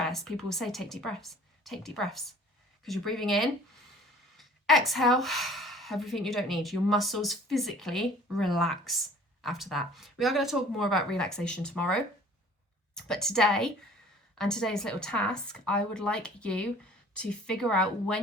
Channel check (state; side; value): normal; both; correlation 0.50